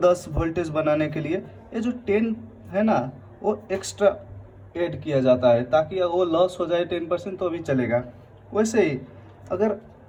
वोल्टेज बनाने के लिए ये जो 10 है ना, वो एक्स्ट्रा ऐड किया जाता है, ताकि वो लॉस हो जाए 10% तो भी चलेगा। वैसे ही अगर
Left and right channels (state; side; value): identical; both; correlation 1.00